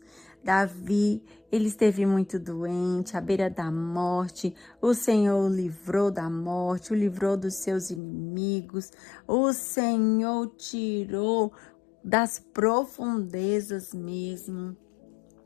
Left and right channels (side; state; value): right; drops out; at 8.0 s